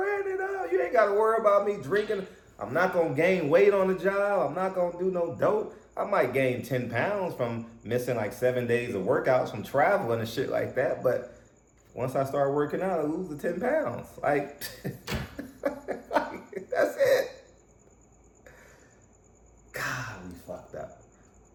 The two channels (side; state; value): both; identical; correlation 1.00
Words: it up. You ain't got to worry about me drinking. I'm not going to gain weight on the job. I'm not going to do no dope. I might gain 10 pounds from missing like 7 days of workouts from traveling and shit like that. But once I start working out, I lose the 10 pounds. Like, that's it. God, we fucked up.